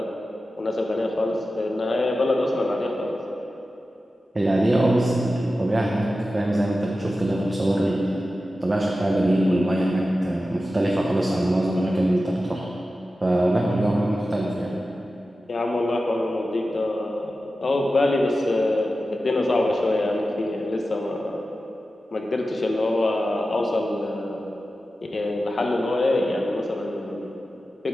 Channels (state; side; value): normal; both; correlation 0.93